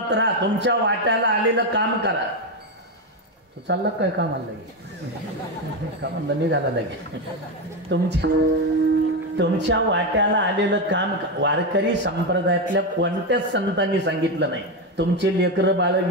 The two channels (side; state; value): both; normal; correlation 0.10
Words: राहा, तुमच्या वाट्याला आलेलं काम करा. तू चालला काय कामाला लगे, कामाला निघाला लगे. तुमच्या वाट्याला आलेलं काम. वारकरी संप्रदायातल्या कोणत्याच संतांनी सांगितलं नाही तुमचे लेकरं बाळ